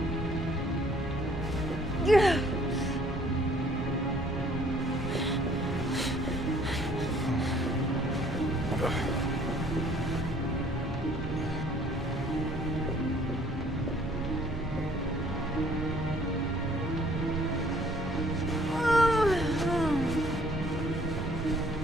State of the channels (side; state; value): both; normal; correlation 0.59